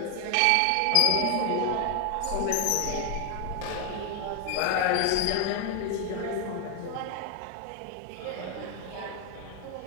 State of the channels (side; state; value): both; different; correlation 0.01